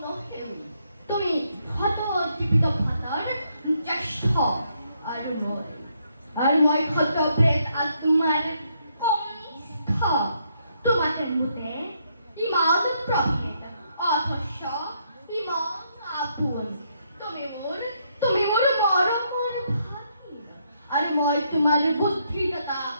তুমি শত জীৱিত ভাতৰ জ্যেষ্ঠ আৰু মই শত প্ৰেত আত্মাৰ কনিষ্ঠ। তোমাকে মোতে ইমান প্ৰভেদ অথচ ইমান আপোন। তুমি মোৰ মৰমৰ ভাগিন আৰু মই তোমাৰ বুদ্ধিদাতা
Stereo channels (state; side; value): inverted; both; correlation -0.75